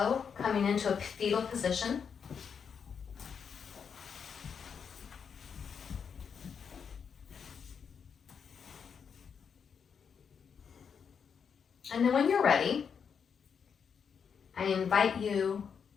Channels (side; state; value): right; quieter; 6.7 dB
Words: coming into a fetal position. And then when you're ready, I invite you